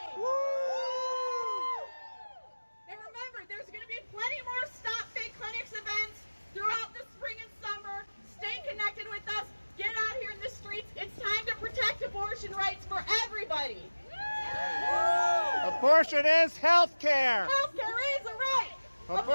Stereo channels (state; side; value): inverted; both; correlation -1.00